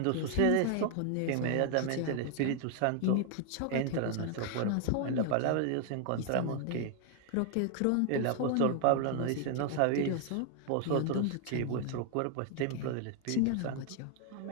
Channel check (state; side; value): different; both; correlation 0.00